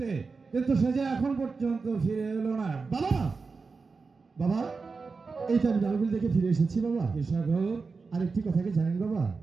কিন্তু সে যে এখন পর্যন্ত ফিরে এলো না। বাবা, বাবা, এই তো আমি নরবলি দেখে ফিরে এসেছি বাবা। কি সাগর? আরেকটি কথা কি জানেন বাবা?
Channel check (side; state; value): left; quieter; 4.5 dB